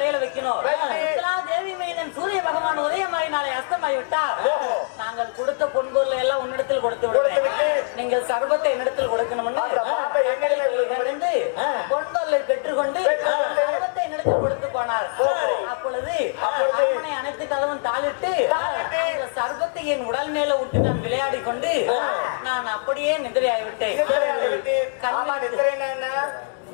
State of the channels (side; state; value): right; silent; digital silence